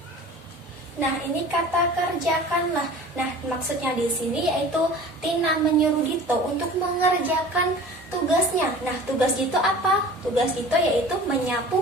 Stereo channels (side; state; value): both; normal; correlation 0.42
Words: Nah, ini kata kerjakanlah. Nah, maksudnya di sini yaitu Tina menyuruh Dito untuk mengerjakan tugasnya. Nah, tugas Dito apa? Tugas Dito yaitu